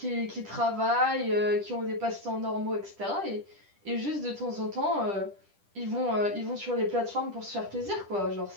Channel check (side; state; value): left; late; 10 ms